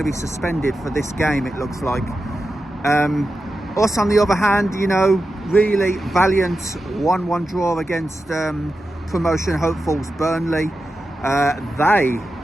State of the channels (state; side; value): normal; both; correlation 0.91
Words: be suspended for this game, it looks like. Us, on the other hand, you know, really valiant 1-1 draw against promotion hopefuls Burnley. They